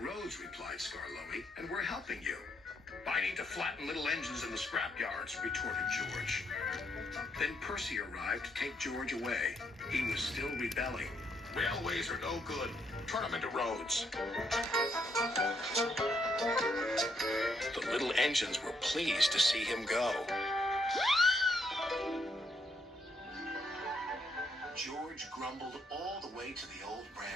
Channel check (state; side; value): normal; both; correlation 0.75